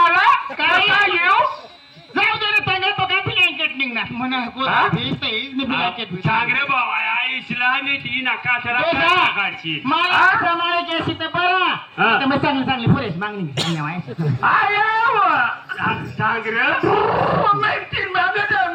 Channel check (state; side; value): identical; both; correlation 1.00